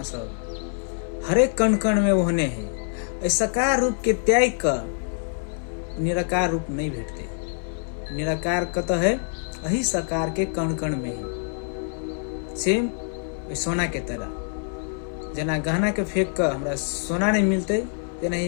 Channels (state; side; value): silent; right; 56 dB below the other